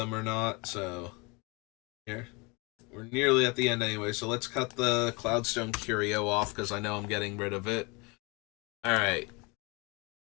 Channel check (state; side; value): quieter; right; 28.1 dB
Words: or not. So here. We're nearly at the end anyway, so let's cut the Cloudstone Curio off because I know I'm getting rid of it. Alright.